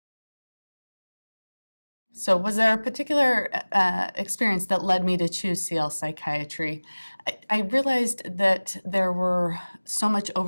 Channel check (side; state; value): both; inverted; correlation -1.00